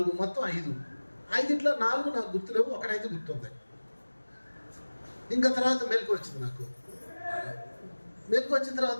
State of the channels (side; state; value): both; inverted; correlation -1.00